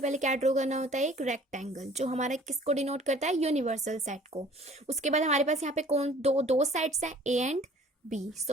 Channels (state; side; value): normal; both; correlation 0.51